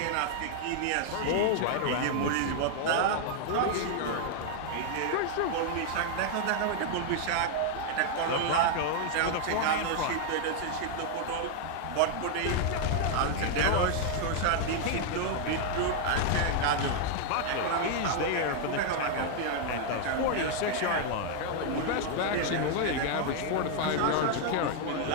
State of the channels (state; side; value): different; both; correlation 0.00